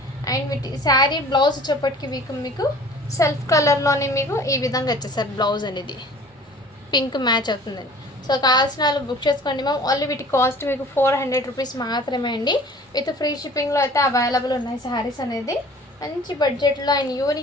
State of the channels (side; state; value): both; normal; correlation 0.47